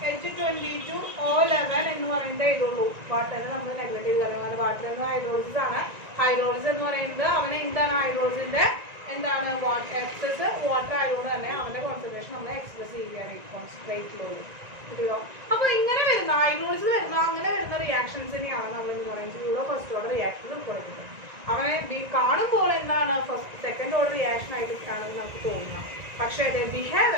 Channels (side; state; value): left; late; 1.9 ms